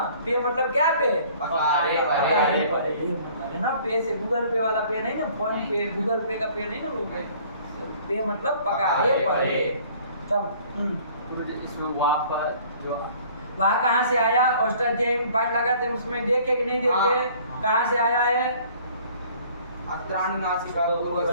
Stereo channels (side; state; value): both; inverted; correlation -0.54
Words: पे मतलब क्या? पे है ना। पे से गूगल पे वाला पे नहीं ना, फोन पे गूगल पे का पे नहीं ना लोग। पे मतलब पकारे पड़े। तब इसमें वहाँ कहाँ से आया? अष्टाध्यायी में पाठ लगाते हैं, उसमें देखे कि नहीं देखे? कहाँ से आया है? अत्राण नासिका